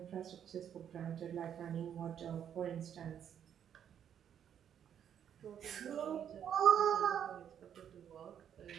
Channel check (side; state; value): left; quieter; 9.1 dB